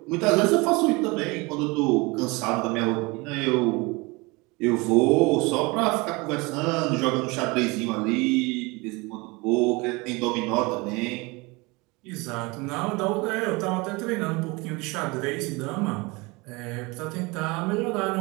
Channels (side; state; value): left; quieter; 25.5 dB